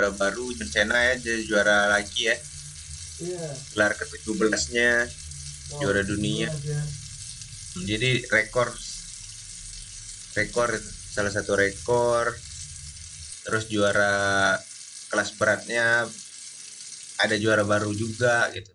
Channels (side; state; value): both; identical; correlation 1.00